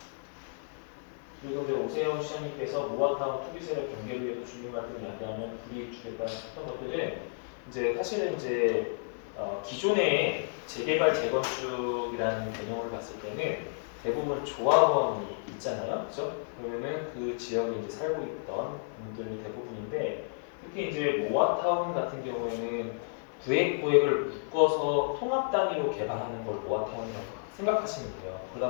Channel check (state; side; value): silent; right; 57 dB below the other